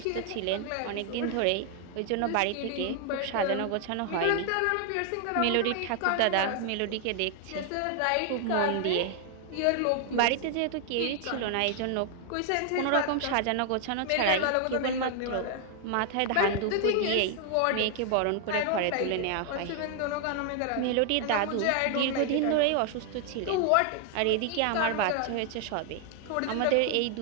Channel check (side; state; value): both; different; correlation 0.00